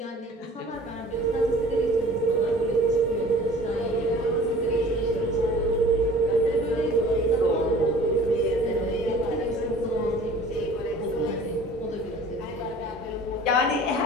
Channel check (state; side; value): normal; both; correlation 0.47